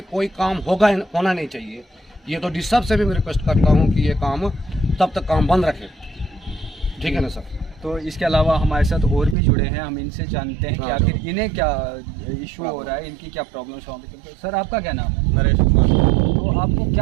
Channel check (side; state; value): left; drops out; at 9.3 s